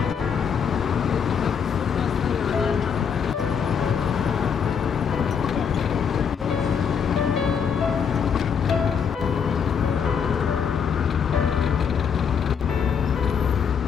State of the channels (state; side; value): quieter; right; 7.0 dB